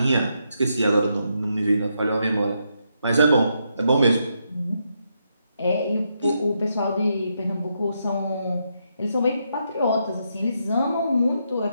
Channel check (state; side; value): inverted; both; correlation -0.80